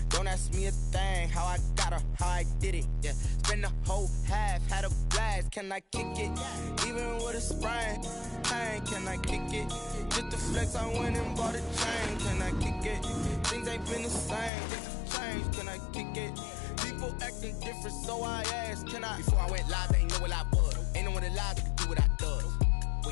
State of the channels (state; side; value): drops out; right; at 14.5 s